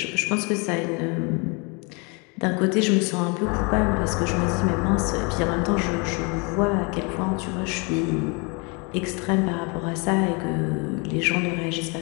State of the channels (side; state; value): right; quieter; 31.4 dB